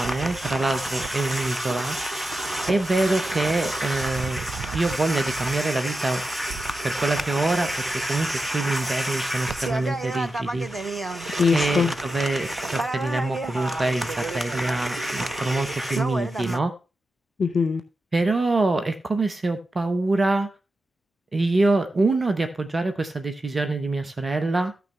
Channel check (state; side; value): normal; both; correlation 0.90